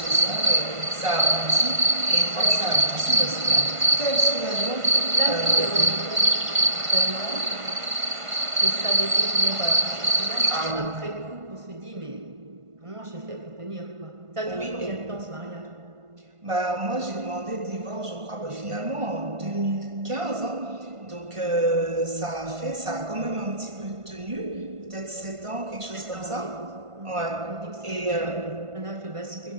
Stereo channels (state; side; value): late; left; 1.5 ms